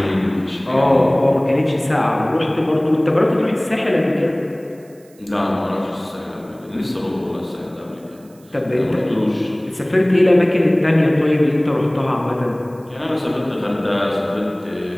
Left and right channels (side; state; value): right; noise; hiss, 30 dB below the sound